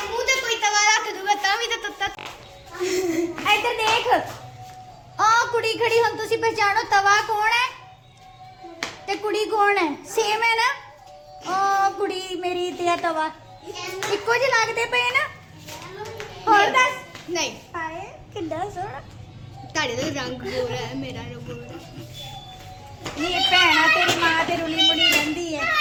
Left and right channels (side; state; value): both; identical; correlation 1.00